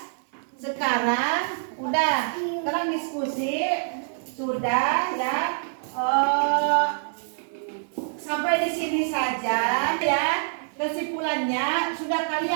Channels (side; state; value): left; silent; 59 dB below the other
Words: Sekarang diskusi sudah ya. Sampai di sini saja ya. Kesimpulannya sudah